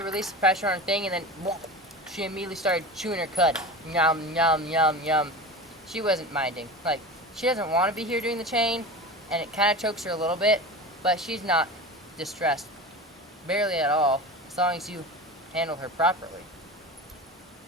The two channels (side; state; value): both; normal; correlation 0.30